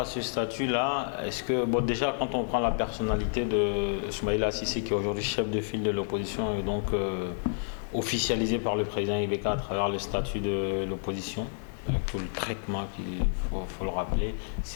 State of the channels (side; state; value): right; silent; digital silence